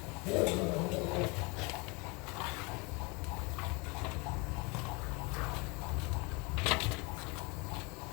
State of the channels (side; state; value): right; quieter; 28.4 dB